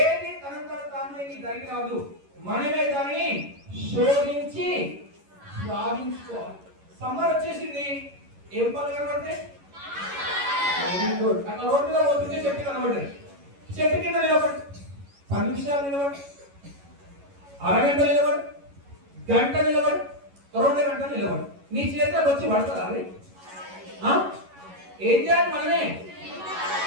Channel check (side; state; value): left; late; 11 ms